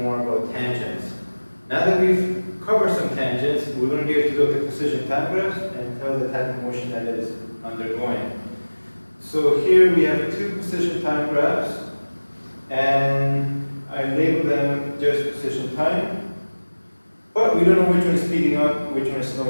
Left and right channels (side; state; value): both; inverted; correlation -1.00